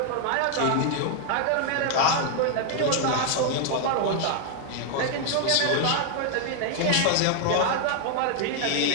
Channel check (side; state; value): both; different; correlation 0.00